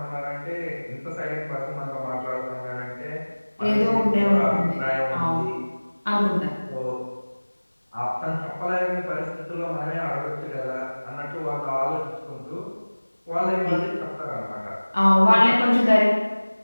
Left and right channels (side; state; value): both; inverted; correlation -1.00